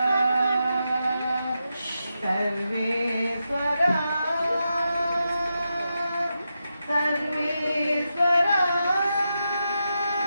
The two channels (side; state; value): both; inverted; correlation -0.87